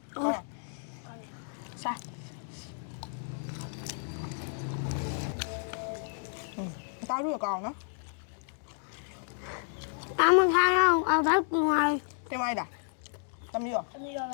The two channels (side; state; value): right; silent; digital silence